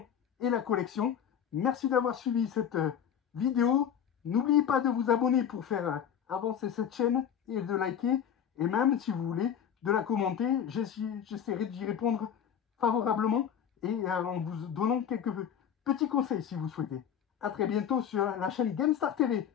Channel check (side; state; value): right; quieter; 8.7 dB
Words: et la collection. Merci d'avoir suivi cette vidéo. N'oubliez pas de vous abonner pour faire avancer cette chaîne et de liker. Et même, si vous voulez, de la commenter. J'essaierai d'y répondre favorablement et en vous donnant quelques petits conseils si vous souhaitez. A très bientôt sur la chaîne GameStar TV.